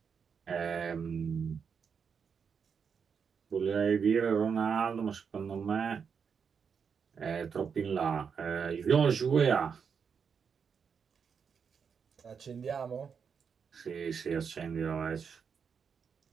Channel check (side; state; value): left; quieter; 6.5 dB